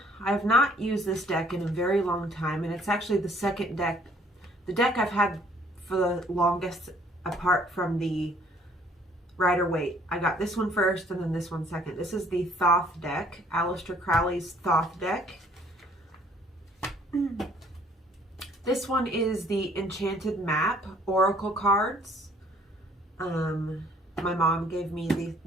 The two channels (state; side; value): normal; both; correlation 0.60